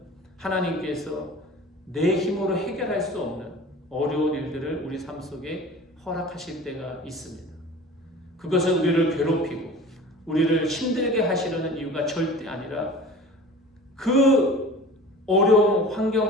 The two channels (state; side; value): normal; both; correlation 0.40